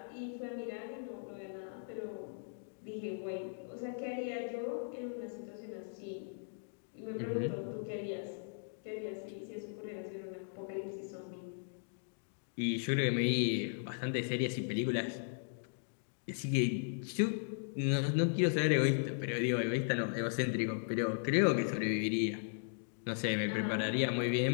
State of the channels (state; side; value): silent; right; digital silence